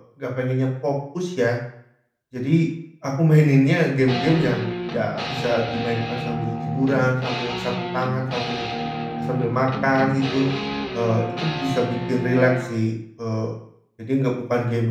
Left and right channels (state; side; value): identical; both; correlation 1.00